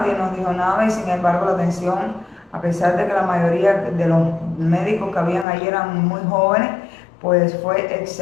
nos dijo nada y sin embargo la atención, a pesar de que la mayoría de los médicos que habían ahí eran muy jóvenes, pues fue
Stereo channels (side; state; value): right; drops out; at 5.5 s